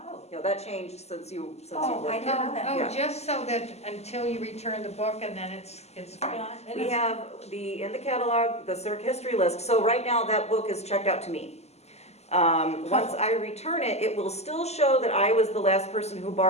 no, that changed since you Oh, I worked didn't there. know that. Oh, Yeah. just so that until you return the book and then it's fine. We have in the catalog, the circ history list, so right now that book is checked out to me. Once I return it, it will still show that I was the last person who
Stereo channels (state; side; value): late; right; 0.31 ms